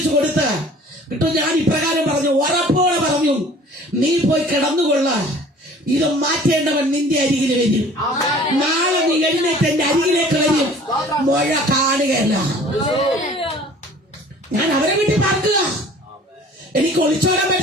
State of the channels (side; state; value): both; normal; correlation 0.49